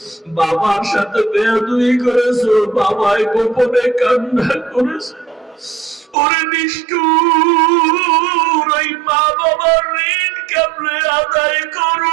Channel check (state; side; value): drops out; left; at 6.2 s